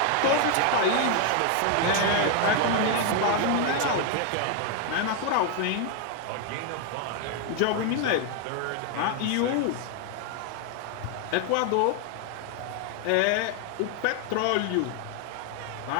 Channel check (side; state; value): both; different; correlation 0.01